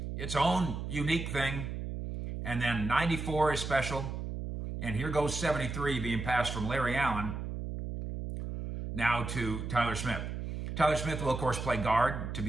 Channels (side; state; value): right; noise; hum, 5 dB below the sound